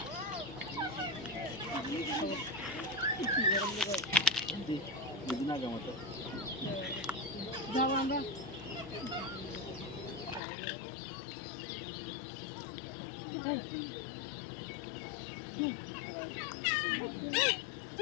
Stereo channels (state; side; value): drops out; right; at 10.4 s